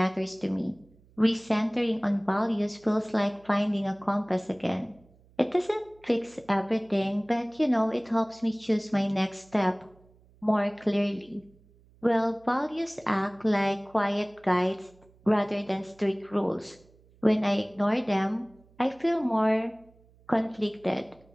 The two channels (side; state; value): right; noise; hum, 29 dB below the sound